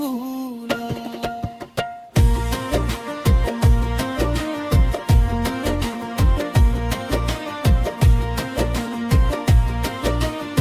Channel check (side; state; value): both; identical; correlation 1.00